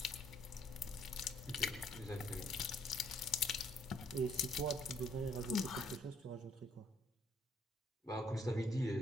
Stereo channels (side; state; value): both; normal; correlation 0.67